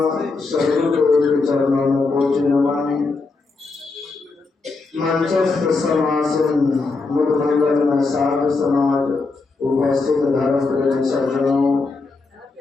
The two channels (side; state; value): right; quieter; 3.9 dB